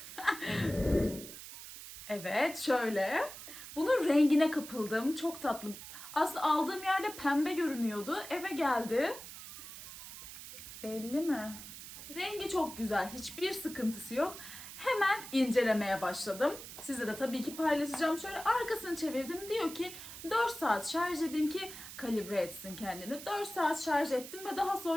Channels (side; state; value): right; noise; hiss, 12 dB below the sound